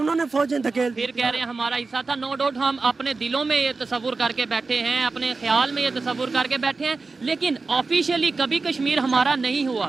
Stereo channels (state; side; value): quieter; left; 4.0 dB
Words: फौजें धकेल दी। फिर कह रहे हैं हमारा हिस्सा था। नो डाउट हम अपने दिलों में ये तस्वुर करके बैठे हैं, अपने ख्याल में ये तस्वुर करके बैठे हैं, लेकिन ऑफिशियली कभी कश्मीर हमारा नहीं हुआ।